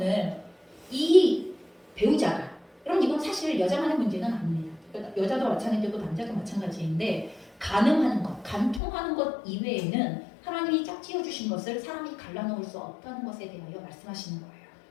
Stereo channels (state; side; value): drops out; right; at 8.8 s